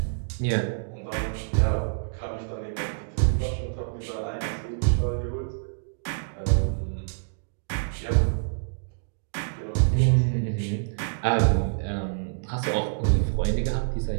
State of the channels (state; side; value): silent; left; digital silence